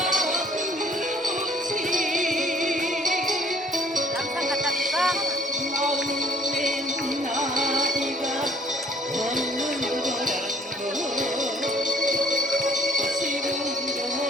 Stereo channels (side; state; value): both; normal; correlation 0.59